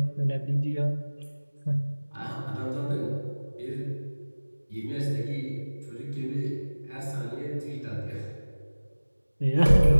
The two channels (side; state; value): both; inverted; correlation -1.00